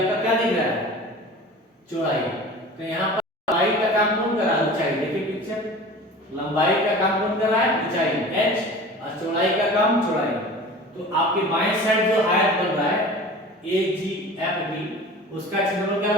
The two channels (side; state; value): both; normal; correlation 0.39